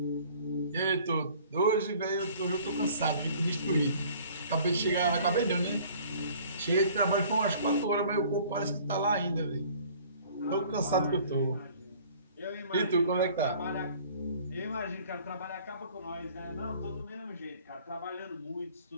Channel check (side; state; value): both; inverted; correlation -0.52